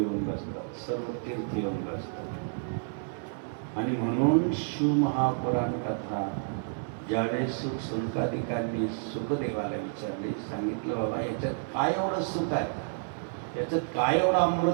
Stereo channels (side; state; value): left; silent; digital silence